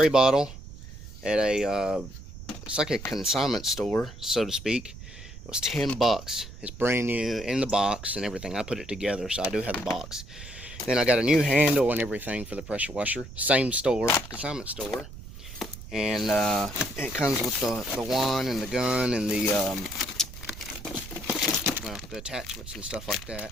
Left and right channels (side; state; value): right; noise; rumble, 14 dB below the sound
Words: bottle at a it's like a consignment store, so to speak. It was $10. It's brand new in the box and everything. I put it together, so I do have the box. Then I got a new handle and everything for the pressure washer. Same store, consignment store. And it comes with the wand and the gun and the well, the attachments and stuff like